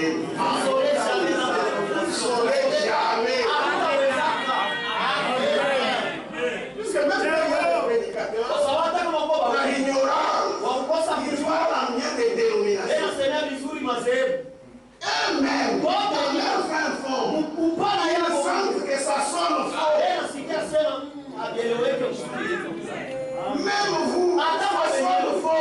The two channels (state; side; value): identical; both; correlation 1.00